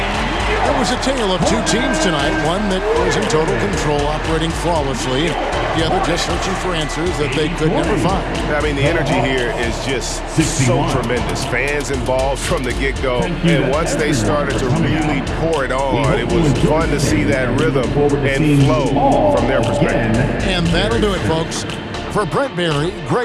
It was a tale of two teams tonight, one that was in total control, operating flawlessly, the other just searching for answers that they could never find. I mean, the energy here is just so tremendous. Fans involved from the get-go, and once they started to really pour it on, it was fun to see that rhythm and flow from their perspective. And that'll do it, folks. For Brent Barry,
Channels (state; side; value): identical; both; correlation 1.00